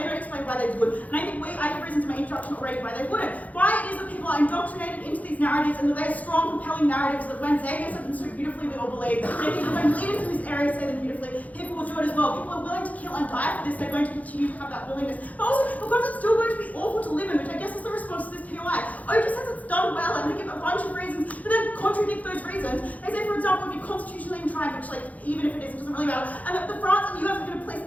don't explain why they would. And I think I have reasons in my introduction already why they wouldn't. Why it is that people are indoctrinated into these narratives and that they are strong, compelling narratives that when Xavier said them so beautifully, we all believe. And I think that when leaders in this area say them beautifully, people will do it as well. People are willing to kill and die for this, they're going to continue to have that willingness. But also because it's still going to be awful to live in, which I guess is the response to this POI. OG says it's done well and they give a bunch of reasons, but then contradict those reasons. They say, for example, if you're constitutionally entrenched, which even if it is, it doesn't really matter, and that the France and the US are going to place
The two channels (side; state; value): right; late; 0.074 ms